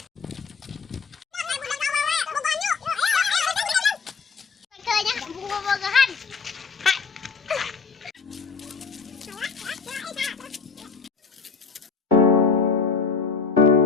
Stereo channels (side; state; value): right; quieter; 5.1 dB